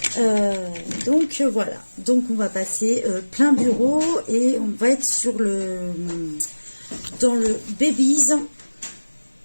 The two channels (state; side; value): inverted; both; correlation -1.00